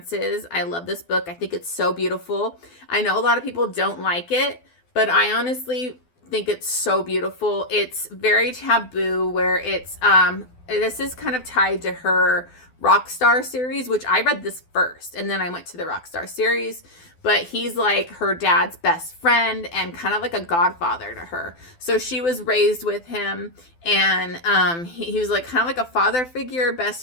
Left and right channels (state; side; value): late; right; 12 ms